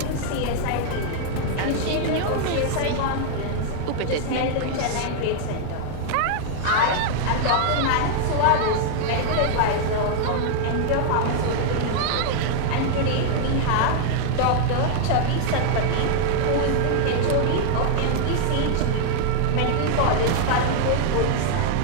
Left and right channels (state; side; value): different; both; correlation 0.00